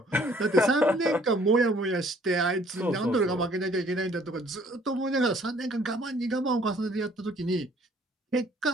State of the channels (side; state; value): both; normal; correlation 0.59